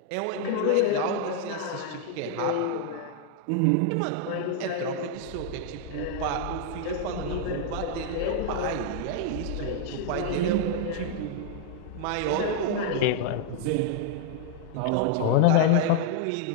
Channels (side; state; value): both; different; correlation 0.00